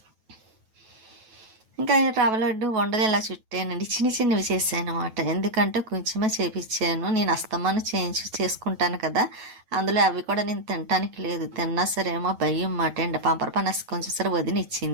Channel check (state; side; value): late; left; 9.2 ms